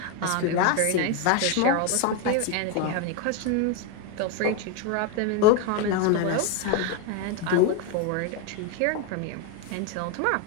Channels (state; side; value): different; both; correlation 0.02